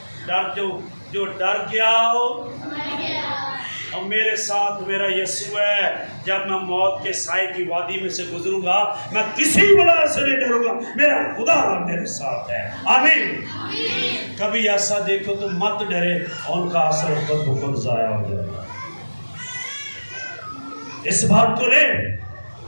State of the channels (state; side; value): inverted; both; correlation -1.00